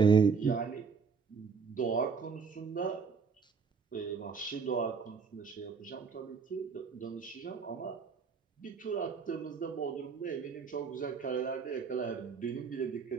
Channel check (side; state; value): left; quieter; 5.5 dB